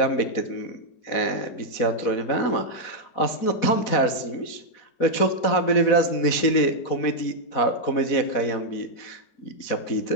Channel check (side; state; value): right; late; 4.1 ms